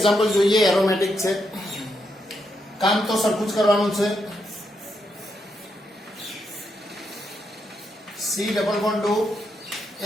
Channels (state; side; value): normal; both; correlation 0.81